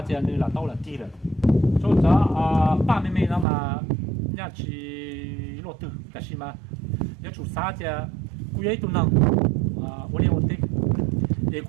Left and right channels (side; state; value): left; drops out; at 3.5 s